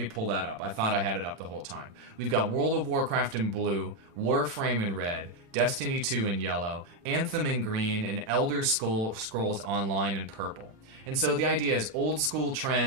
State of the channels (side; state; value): left; late; 36 ms